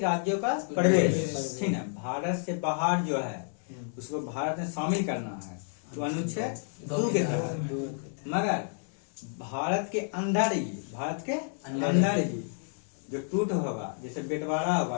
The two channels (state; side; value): silent; right; digital silence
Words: राज्यों का प्रवेश, ठीक है। भारत से बाहर जो है उसको भारत में शामिल करना है, तो अनुच्छेद 2 के तहत। मगर भारत के अंदर ही जो टूट होगा, जैसे बंटवारा होगा,